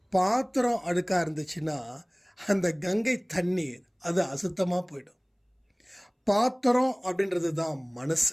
பாத்திரம் அழுக்காக இருந்துச்சுன்னா அந்த கங்கை தண்ணீர் அது அசுத்தமாக போயிடும். பாத்திரம் அப்படின்றது தான்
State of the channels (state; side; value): identical; both; correlation 1.00